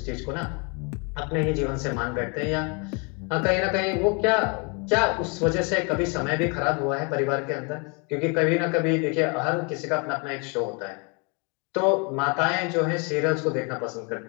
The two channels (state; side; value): quieter; right; 33.7 dB